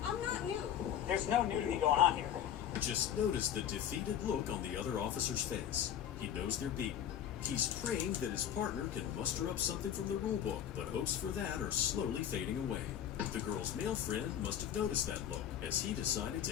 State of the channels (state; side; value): quieter; right; 10.0 dB